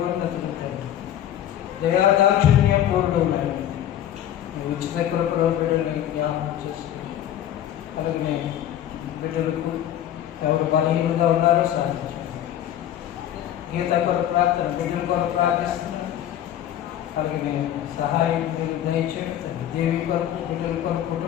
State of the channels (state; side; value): quieter; right; 11.3 dB